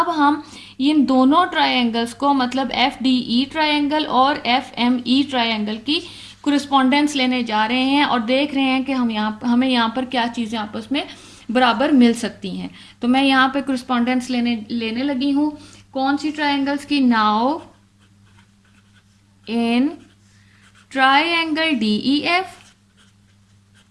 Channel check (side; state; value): both; identical; correlation 1.00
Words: हम इन दोनों ट्रायंगल्स को, मतलब एफ डी ई ट्रायंगल और एफ एम ई ट्रायंगल की कोरिस्पॉन्डेंस लेने जा रहे हैं और देख रहे हैं कि हमें यहाँ पर क्या चीज़ें आपस में बराबर मिल सकती हैं। तो मैं यहाँ पे कोरिस्पॉन्डेंस लेने लगी हूँ कौन सी ट्रायंगल्स की, now in triangle DEF